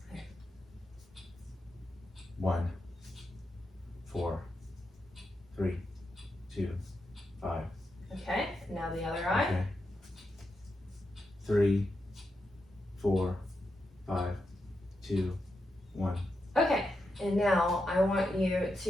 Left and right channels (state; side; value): normal; both; correlation 0.86